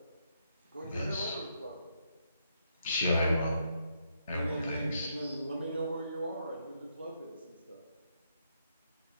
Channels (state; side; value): inverted; both; correlation -0.77